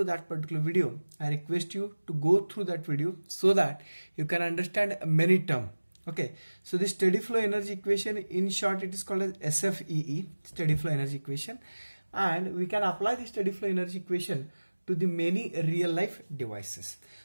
that particular video, I request you to go through that video so that you can understand many terms. Okay, so this steady flow energy equation, in short it is called as SFEE, steady flow energy equation, and we can apply the steady flow energy equation to the many real life devices.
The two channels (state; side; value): inverted; both; correlation -1.00